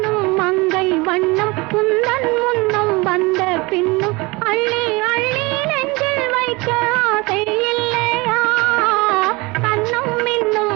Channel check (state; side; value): quieter; left; 24.8 dB